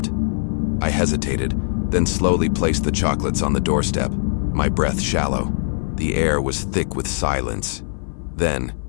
I hesitated, then slowly placed the chocolates on the doorstep, my breath shallow. The air was thick with silence. Then,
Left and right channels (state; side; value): silent; right; 58 dB below the other